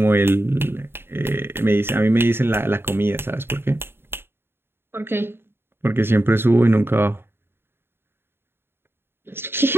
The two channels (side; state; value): left; late; 0.11 ms